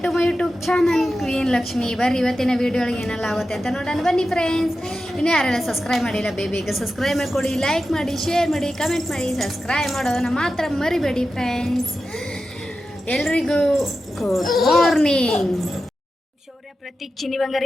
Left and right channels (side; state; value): both; normal; correlation 0.92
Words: to my YouTube channel queen Lakshmi. ಬರ್ರಿ ಇವತ್ತಿನ ವಿಡಿಯೋಗೆ ಏನೆಲ್ಲ ಆಗುತ್ತೆ ಅಂತ ನೋಡೋಣ ಬನ್ನಿ ಫ್ರೆಂಡ್ಸ್. ಇನ್ನೂ ಯಾರೆಲ್ಲ ಸಬ್ಸ್ಕ್ರೈಬ್ ಮಾಡಿಲ್ಲ ಬೇಗ ಸಬ್ಸ್ಕ್ರೈಬ್ ಮಾಡಿಕೊಡಿ, ಲೈಕ್ ಮಾಡಿ, ಶೇರ್ ಮಾಡಿ, ಕಮೆಂಟ್ ಮಾಡಿ. ಸಬ್ಸ್ಕ್ರೈಬ್ ಮಾಡೋದನ್ನ ಮಾತ್ರ ಮರಿಬೇಡಿ ಫ್ರೆಂಡ್ಸ್. ಎಲ್ರಿಗೂ ಗುಡ್ ಮಾರ್ನಿಂಗ್. ಶೌರ್ಯ, ಪ್ರತೀಕ್, ಚಿನ್ನಿ